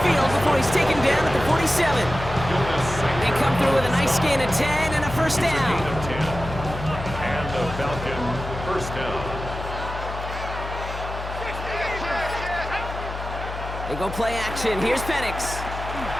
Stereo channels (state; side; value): noise; left; hum, 8 dB below the sound